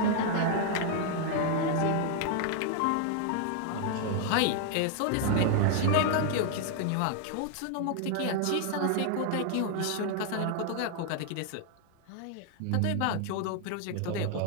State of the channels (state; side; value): different; both; correlation 0.00